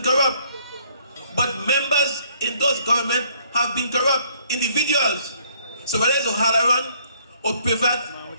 corrupt, but members in those governments have been corrupt individuals. So whether it's O'Halloran, or Privat,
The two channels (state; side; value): inverted; both; correlation -0.64